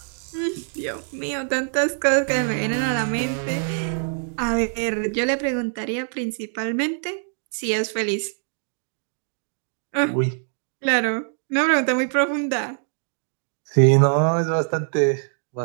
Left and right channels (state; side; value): silent; left; 63 dB below the other